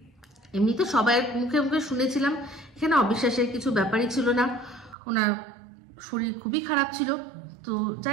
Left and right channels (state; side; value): drops out; left; at 5.0 s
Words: এমনি তো সবাই মুখে মুখে শুনেছিলাম, এখানে অবিশ্বাসের কিছু ব্যাপারই ছিল না। ওনার শরীর খুবই খারাপ ছিল। তো